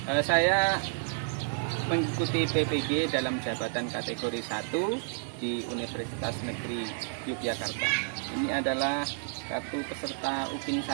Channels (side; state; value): left; silent; digital silence